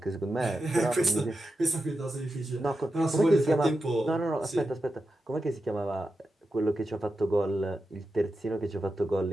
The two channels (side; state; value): both; normal; correlation 0.90